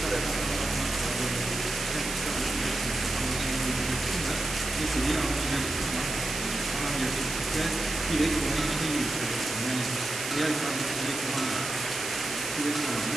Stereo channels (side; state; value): right; noise; hiss, 6 dB below the sound